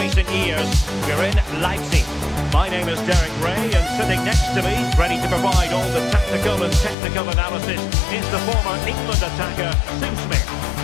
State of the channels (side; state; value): right; drops out; at 7.0 s